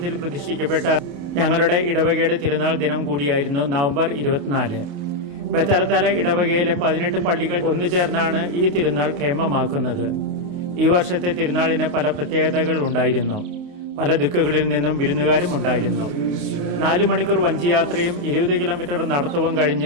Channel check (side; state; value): left; late; 28 ms